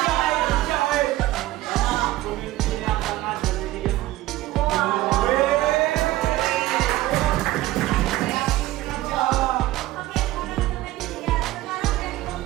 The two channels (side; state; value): left; quieter; 16.5 dB